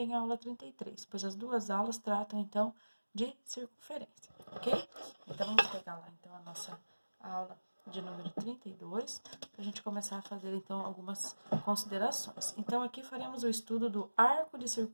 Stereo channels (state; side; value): inverted; both; correlation -1.00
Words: a aula 33, pois as duas aulas tratam então de circunferência, ok? Então vamos pegar lá então a nossa aula de número 32, para a gente começar a fazer então algumas considerações. Então aqui faremos o estudo do arco de